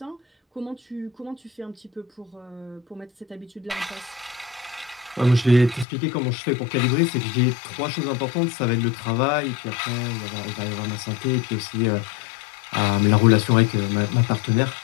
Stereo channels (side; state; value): right; drops out; at 5.9 s